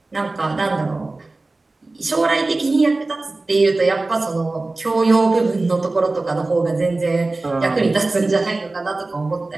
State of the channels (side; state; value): left; quieter; 3.2 dB